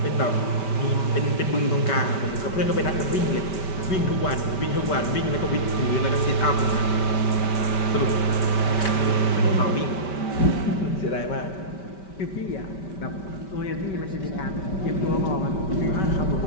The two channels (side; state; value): right; late; 5.2 ms